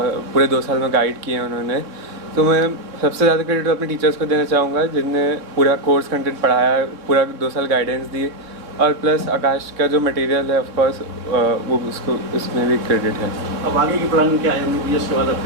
पूरे 2 साल में गाइड किए हैं उन्होंने. तो मैं सबसे ज़्यादा क्रेडिट अपने टीचर्स को देना चाहूँगा जिनने पूरा कोर्स कंटेंट पढ़ाया, पूरा 2 साल गाइडेंस दी, और प्लस आकाश का जो मटेरियल है ऑफ कोर्स वो उसमें भी क्रेडिट है. अब आगे की प्लानिंग क्या है? MBBS के बाद अब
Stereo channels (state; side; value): late; left; 3.6 ms